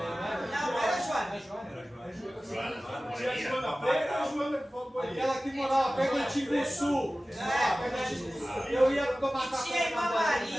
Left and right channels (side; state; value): both; normal; correlation 0.96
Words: Não era a Joana. Tinha a Joana Preta e a Joana que falou do banheiro. Aquela que morava perto do Timbuçu. Eu ia tomar café. Tinha a